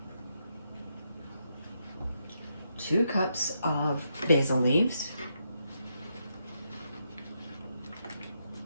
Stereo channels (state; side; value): inverted; both; correlation -0.80